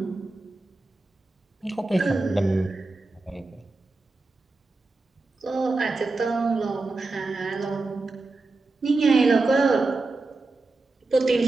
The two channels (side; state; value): left; quieter; 3.4 dB